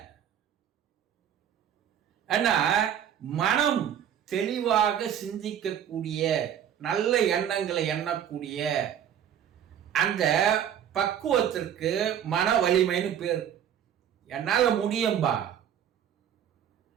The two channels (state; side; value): quieter; left; 9.5 dB